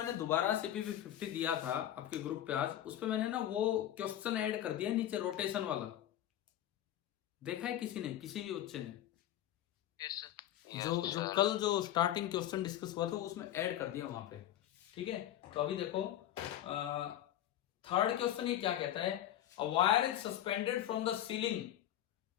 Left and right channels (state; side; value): quieter; right; 12.0 dB